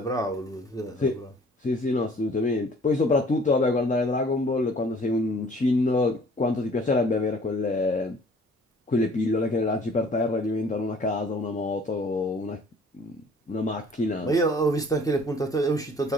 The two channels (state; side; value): normal; both; correlation 0.54